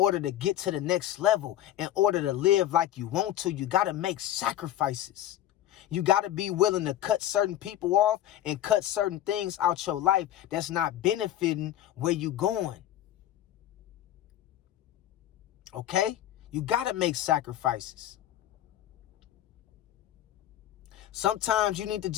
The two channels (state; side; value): quieter; right; 12.5 dB